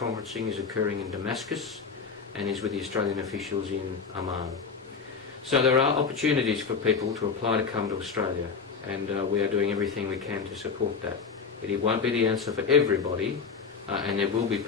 is occurring in Damascus and is with the Australian officials in Amman. So there are opportunities for people to apply to come to Australia, and we are doing everything we can to support that. It won't be the answer for everybody, and there will be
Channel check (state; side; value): quieter; right; 5.4 dB